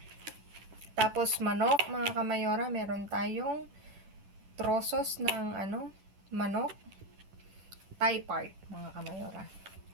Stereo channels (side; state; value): left; late; 10 ms